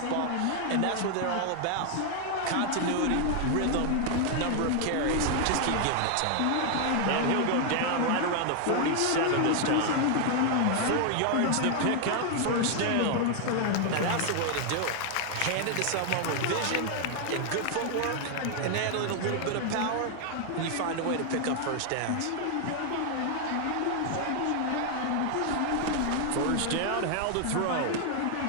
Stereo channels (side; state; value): both; different; correlation 0.00